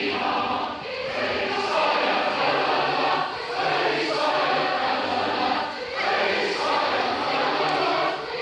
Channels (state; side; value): identical; both; correlation 1.00